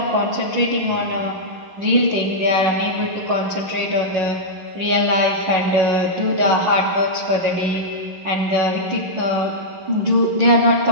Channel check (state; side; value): late; left; 11 ms